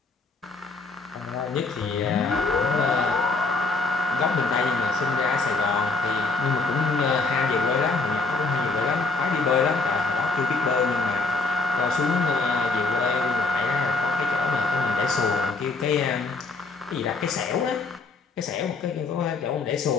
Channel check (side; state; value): right; quieter; 3.9 dB